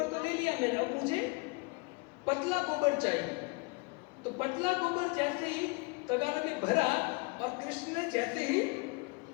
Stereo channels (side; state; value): right; quieter; 27.4 dB